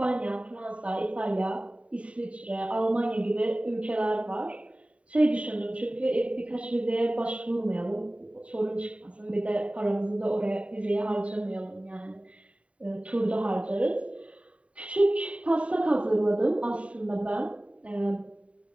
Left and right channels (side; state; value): left; late; 0.064 ms